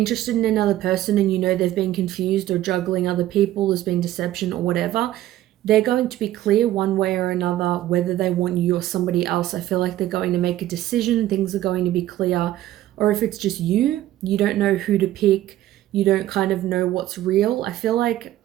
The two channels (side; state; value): left; quieter; 14.1 dB